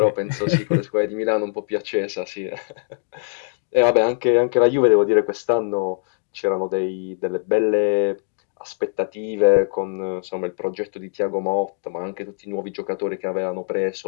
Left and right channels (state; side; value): silent; right; digital silence